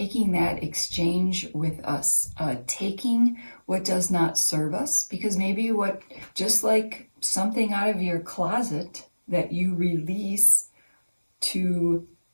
that exchange with us, taking what does not serve us, because maybe just like something out of your closet that you release to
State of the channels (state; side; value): inverted; both; correlation -1.00